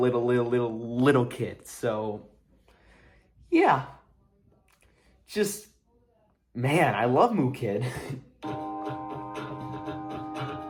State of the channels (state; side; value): identical; both; correlation 1.00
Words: kid. So yeah, just. Man, I love Moo Kid.